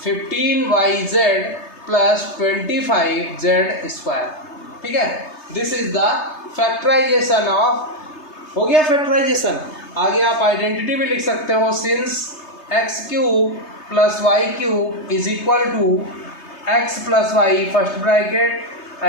15yz plus 25z square, ठीक है। This is the factorisation of, हो गया फैक्टराइजेशन। आगे आप आइडेंटिटी भी लिख सकते हो, since x³ plus y³ is equal to x plus y first bracket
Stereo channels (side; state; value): right; late; 3.3 ms